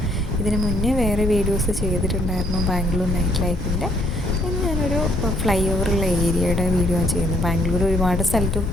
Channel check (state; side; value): normal; both; correlation 0.68